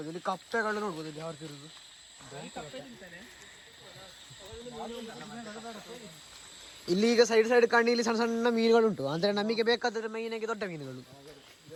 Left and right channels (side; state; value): both; identical; correlation 1.00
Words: ಇಲ್ಲಿ ಕಪ್ಪೆಗಳು ನೋಡ್ಬೋದು ಇಲ್ಲಿ ಯಾರು ತಿರುದು. ಇಲ್ಲಿ ಈಗ ಸೈಡ್ ಸೈಡ್ ಕಣ್ಣಿಲಿ ಸಣ್ಣ ಸಣ್ಣ ಮೀನುಗಳುಂಟು, ಅಂದರೆ ನಮಗೆ ಬೇಕಾದರೆ ಮೈನಾಗಿ ದೊಡ್ಡ ಮೀನುಗಳು.